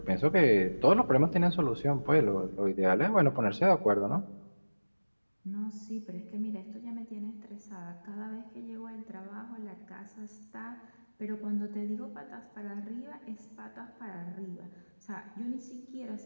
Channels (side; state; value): both; inverted; correlation -1.00